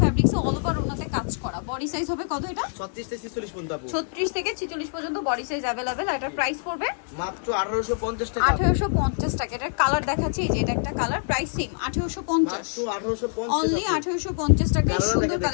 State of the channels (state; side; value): silent; right; digital silence